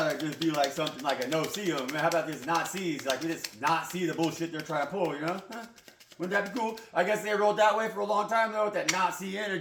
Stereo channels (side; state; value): both; identical; correlation 1.00